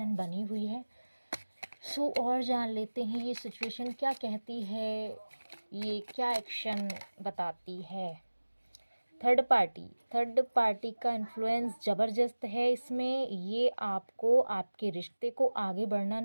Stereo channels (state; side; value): inverted; both; correlation -1.00